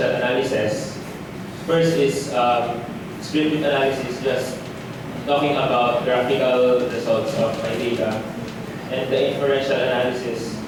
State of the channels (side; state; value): both; identical; correlation 1.00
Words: analysis. First is descriptive analysis, just talking about graphical results of my data, and the inferential analysis